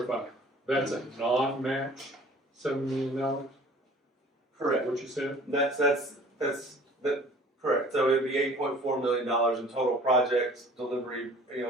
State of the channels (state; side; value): normal; both; correlation 0.49